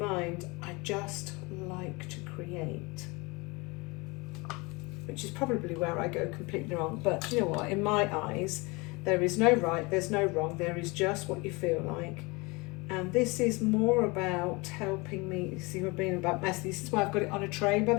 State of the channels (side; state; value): right; quieter; 26.2 dB